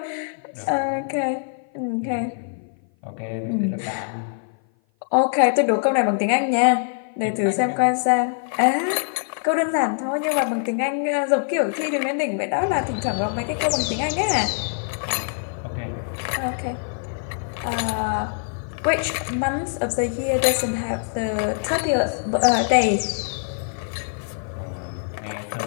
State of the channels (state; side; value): silent; right; 56 dB below the other